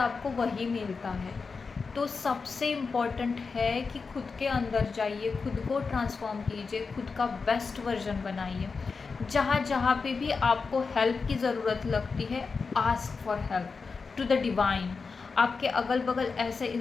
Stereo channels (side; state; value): right; quieter; 4.7 dB